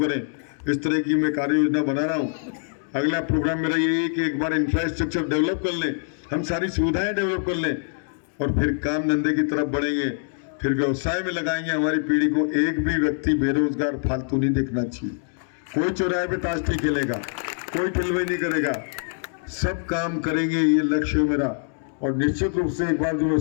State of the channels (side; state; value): right; silent; digital silence